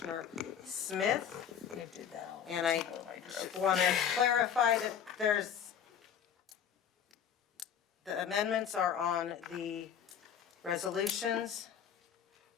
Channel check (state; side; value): quieter; right; 8.3 dB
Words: Smith. And I want to clarify that the amendments are on the resolutions.